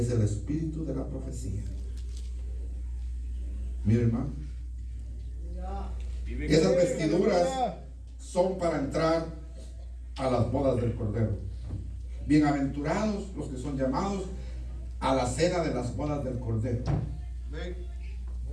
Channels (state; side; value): identical; both; correlation 1.00